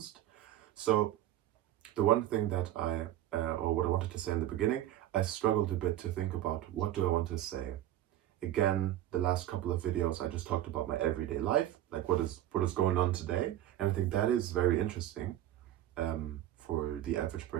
So the one thing that or what I wanted to say in the beginning, I struggled a bit to think about what do I want to say. Again, the last couple of videos I just talked about my everyday life, like what is going on today, and I think that is very interesting for the average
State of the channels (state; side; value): quieter; left; 13.1 dB